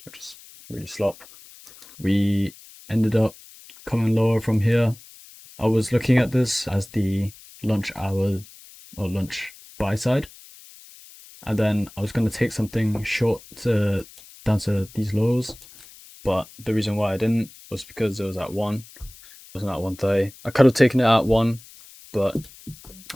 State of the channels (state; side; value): noise; left; hiss, 21 dB below the sound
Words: just really slop. We ended up coming lower from here. I was looking at this as the lunch hour or lunch buy side, and then I was going to take something short down to these lows, but the reason why I didn't was because it was at 1. It wasn't at 1:30. I could have taken it at 1, but